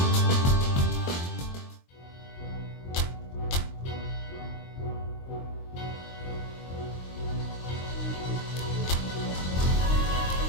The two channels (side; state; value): right; late; 23 ms